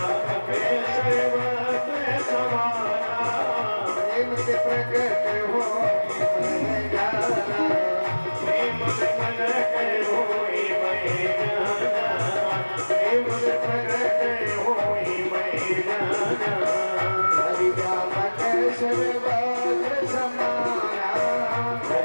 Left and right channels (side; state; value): both; inverted; correlation -1.00